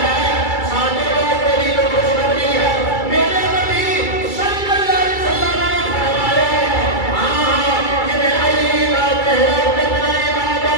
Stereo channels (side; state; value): right; late; 2.3 ms